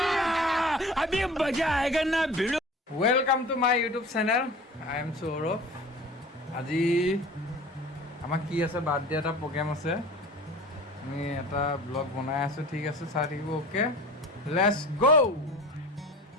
अभी मजा आएगा ना भिड़ो welcome to my YouTube channel I am Saurabh আজি আমাৰ কি আছে বাৰ্থডে এটা প্ৰগ্ৰাম আছে আমি এটা ব্লগ বনাই আছো ঠিক আছে চাই থাকিব ওকে লেটস গো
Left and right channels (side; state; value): both; normal; correlation 0.40